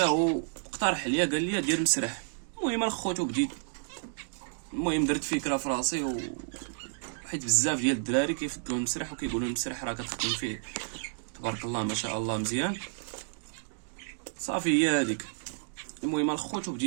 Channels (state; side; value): silent; left; digital silence